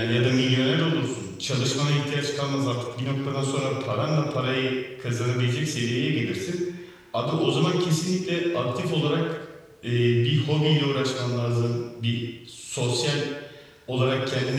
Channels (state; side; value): identical; both; correlation 1.00